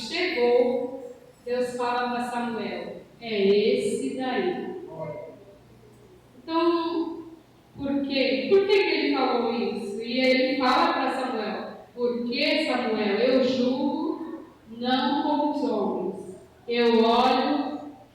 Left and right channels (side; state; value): both; identical; correlation 1.00